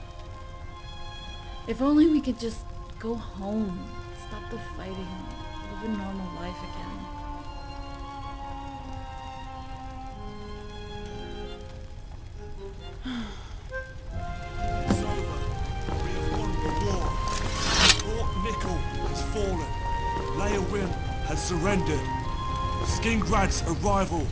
If only we could just go home, stop the fighting, live a normal life again. It's over. We have won the war. Fort Nickel has fallen. Leowin has surrendered. Skingrad's arrival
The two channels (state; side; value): identical; both; correlation 1.00